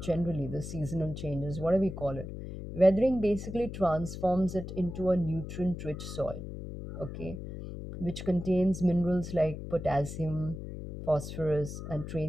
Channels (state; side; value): noise; left; hum, 9 dB below the sound